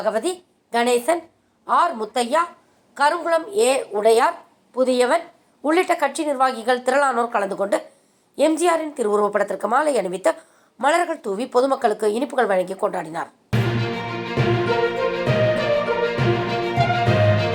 கணேசன், ஆர் முத்தையா, கருங்குளம் உடையார், புதியவன் உள்ளிட்ட கட்சி நிர்வாகிகள் திரளானோர் கலந்து கொண்டு எம்ஜிஆரின் திருவுருவப் படத்திற்கு மாலை அணிவித்து மலர்கள் தூவி பொதுமக்களுக்கு இனிப்புகள் வழங்கி கொண்டாடினார்.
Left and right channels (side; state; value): both; identical; correlation 1.00